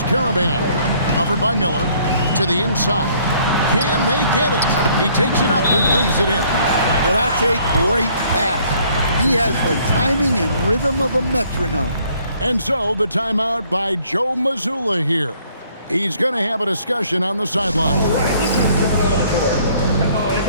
Caravan. Covered by Miller. To the inside. Can they get it? He takes it up and lays it in. Well, that's a great pass. He has the timing and rhythm of a metronome. And so the timeout by Joe Mazzulla here. He's going to have a discussion on the sideline. All right, let's just give it on the court. Come on and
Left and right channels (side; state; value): both; inverted; correlation -0.62